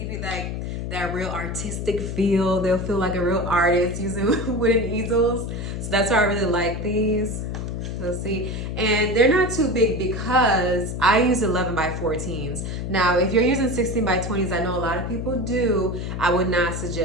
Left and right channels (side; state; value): left; noise; hum, 4 dB below the sound